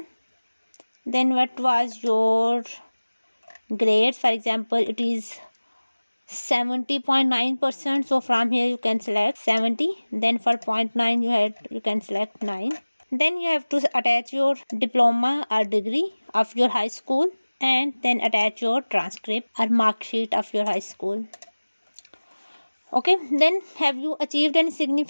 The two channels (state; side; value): inverted; both; correlation -1.00